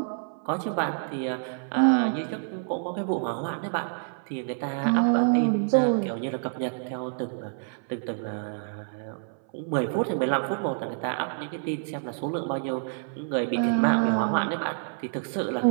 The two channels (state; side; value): silent; left; 60 dB below the other